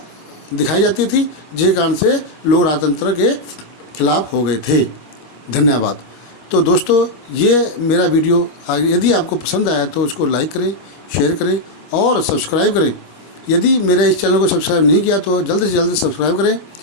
दिखाई जाती थी, जिस कारण से लोग राजतंत्र के खिलाफ हो गए थे। धन्यवाद। तो दोस्तों, ये मेरा वीडियो यदि आपको पसंद आया तो उसको लाइक करें, शेयर करें और सब्सक्राइब करें। यदि मेरे इस चैनल को सब्सक्राइब नहीं किया तो जल्द से जल्द सब्सक्राइब करें,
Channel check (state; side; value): late; right; 25 ms